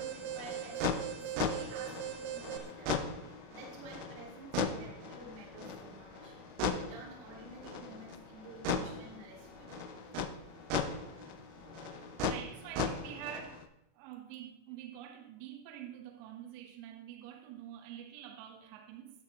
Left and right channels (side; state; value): left; late; 38 ms